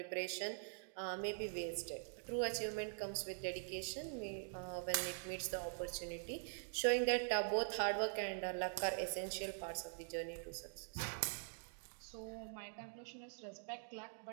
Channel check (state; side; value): silent; left; digital silence